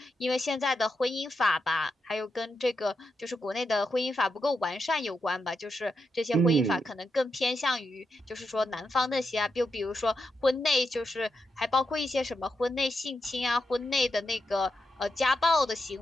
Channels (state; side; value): normal; both; correlation 0.85